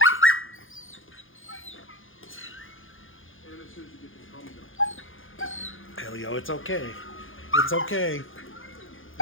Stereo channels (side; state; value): right; late; 0.58 ms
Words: Elio, it's okay. It's okay.